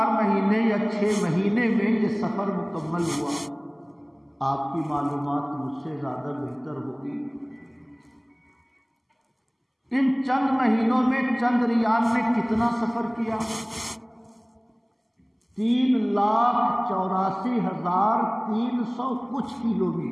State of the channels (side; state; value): both; identical; correlation 1.00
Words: مہینے یا 6 مہینے میں یہ سفر مکمل ہوا۔ آپ کی معلومات مجھ سے زیادہ بہتر ہوگی۔ ان چند مہینوں میں چندریان نے کتنا سفر کیا؟ 3,84,300 کچھ